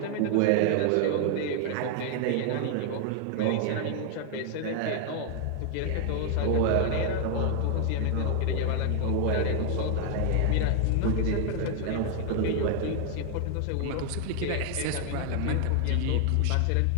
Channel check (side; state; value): both; different; correlation 0.00